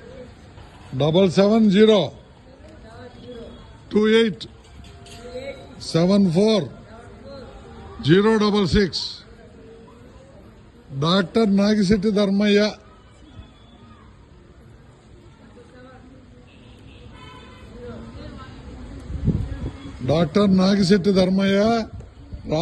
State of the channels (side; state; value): both; identical; correlation 1.00